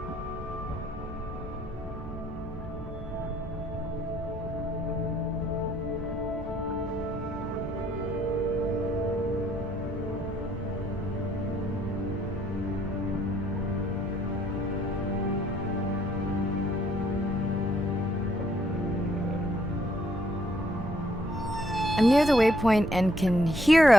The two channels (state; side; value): normal; both; correlation 0.68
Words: I'm near the waypoint and can hear